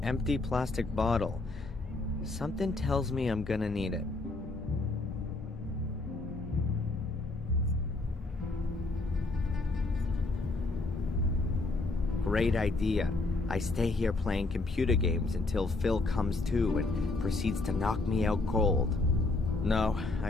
empty plastic bottle. Something tells me I'm gonna need it. Great idea. I stay here playing computer games until Phil comes to and proceeds to knock me out cold. No, I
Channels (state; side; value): quieter; right; 3.3 dB